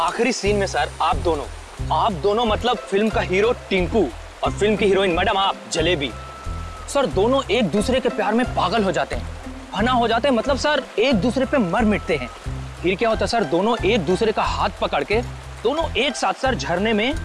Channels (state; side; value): identical; both; correlation 1.00